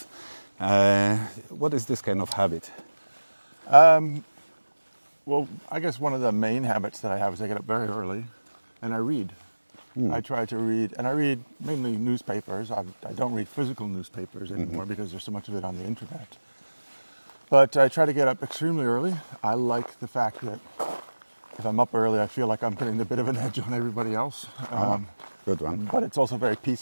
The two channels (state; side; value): inverted; both; correlation -1.00